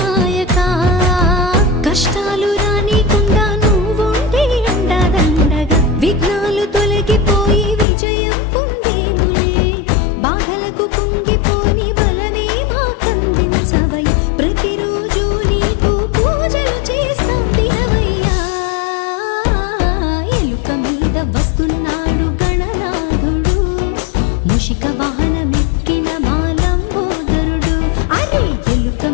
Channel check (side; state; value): right; drops out; at 7.9 s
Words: కష్టాలు రానికుండా నువ్వుంటే అండదండగా విఘ్నాలు తొలగిపోయి విజయం పొందేములే బాధలకు కుంగిపోని బలమే మాకందించవయ్య ప్రతిరోజు నీకు పూజలు చేస్తాం దినవయ్యా ఎలుక మీద వస్తున్నాడు గణనాథుడు మూషిక వాహనమెక్కిన మాలంబోదరుడు అరే ఎలుక